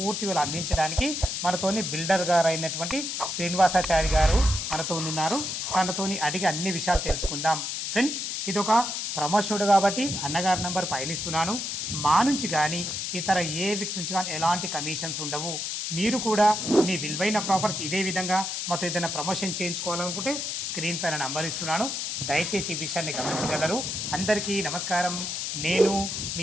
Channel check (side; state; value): left; noise; hiss, 3 dB below the sound